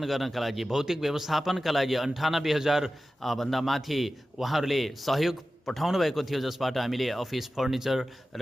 गर्नका लागि, भौतिक व्यवस्थापनका लागि 98,000 भन्दा माथि उहाँहरूले सहयोग पठाउनु भएको थियो, जसबाट हामीले अफिस फर्निचर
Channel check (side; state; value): both; normal; correlation 0.94